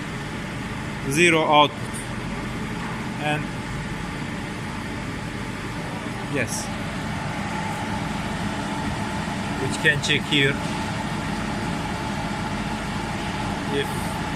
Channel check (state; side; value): identical; both; correlation 1.00